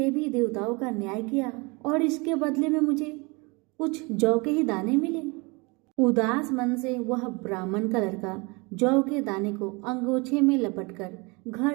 देवताओं का न्याय किया और इसके बदले में मुझे कुछ जौ के ही दाने मिले। उदास मन से वह ब्राह्मण का लड़का जौ के दाने को अंगोछे में लपटकर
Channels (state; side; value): quieter; left; 27.8 dB